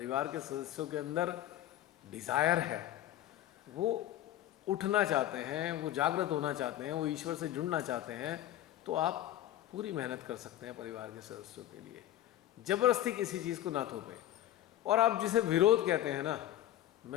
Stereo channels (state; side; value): quieter; right; 13.1 dB